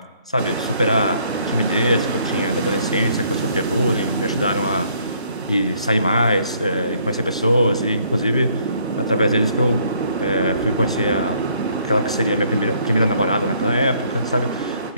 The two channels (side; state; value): both; inverted; correlation -0.65